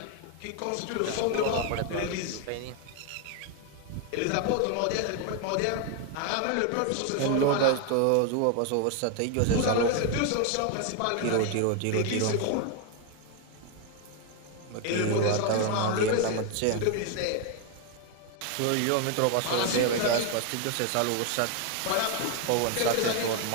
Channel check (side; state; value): both; different; correlation 0.01